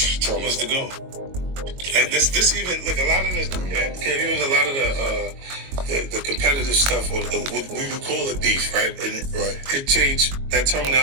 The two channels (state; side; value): late; left; 22 ms